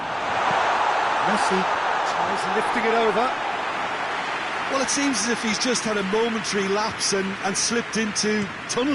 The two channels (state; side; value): identical; both; correlation 1.00